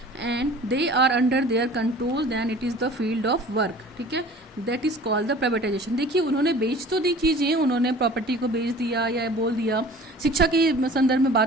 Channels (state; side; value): normal; both; correlation 0.45